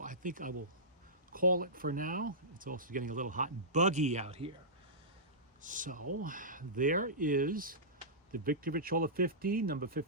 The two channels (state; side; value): normal; both; correlation -0.17